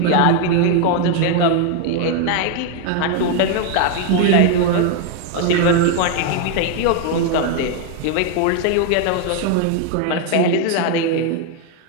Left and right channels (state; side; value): different; both; correlation 0.01